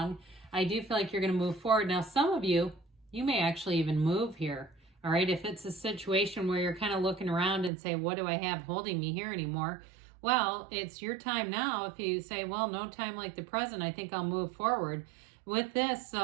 I do feel like you're going to move forward. Now, some of you may actually even move here. All right. If it's a situation where you're kind of looking around and say, what do I have holding me here anymore? Well, it's your time now. If you say, well, no time like the present, I think I'll move forward with this.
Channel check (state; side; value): drops out; left; at 7.7 s